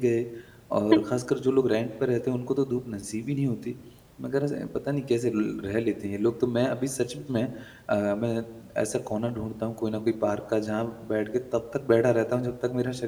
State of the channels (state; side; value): identical; both; correlation 1.00